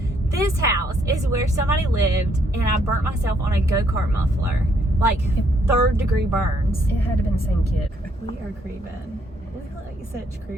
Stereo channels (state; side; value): normal; both; correlation 0.70